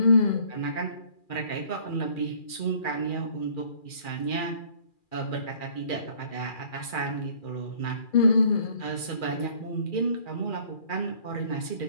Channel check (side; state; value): right; late; 2.4 ms